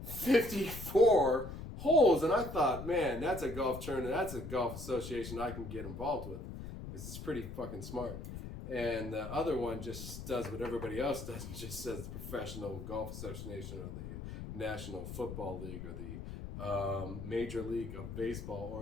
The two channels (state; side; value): noise; left; rumble, 9 dB below the sound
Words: 54 holes, and I thought, man, that's a golf tournament. That's a golf association I can get involved with. It's pretty fucking smart. And the other one just does what everybody else does and just says the Professional Golf Association or the National Football League or the Major League of